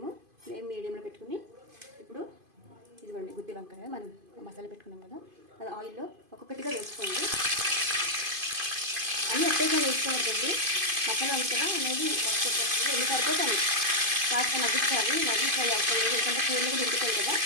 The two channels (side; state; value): left; late; 2.5 ms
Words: ఫ్లేమ్ మీడియంలో పెట్టుకుని ఇప్పుడు ఇదిగోండి గుత్తి వంకాయ మనం మసాలా పెట్టుకున్నాం కదా, అది ఆయిల్లో ఒక్కొక్కటిగా వేసుకోండి. అన్నీ ఒకేసారి వేసుకోవద్దండి, మసాలా ఉంది కదా అనేది వేసుకోవచ్చు. ఎన్ని సరిపోతాయి, కాస్త మగ్గించాలి, మరీ ఫ్రై అవసరం లేదు, ఎందుకంటే కూరలకు దింపుతాయి కదా.